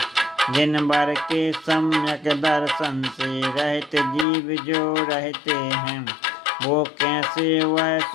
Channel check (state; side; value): drops out; right; at 4.2 s